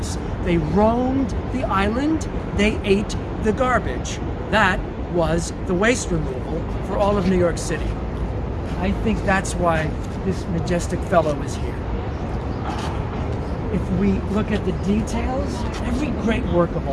They roamed the island. They ate the garbage. That was the waste removal for all of New York City. I think that's why this majestic fellow is here. If we look at the details, every great work of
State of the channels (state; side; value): identical; both; correlation 1.00